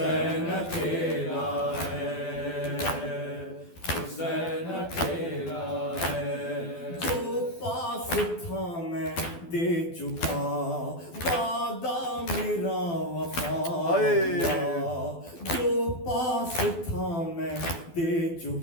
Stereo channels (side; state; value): right; late; 12 ms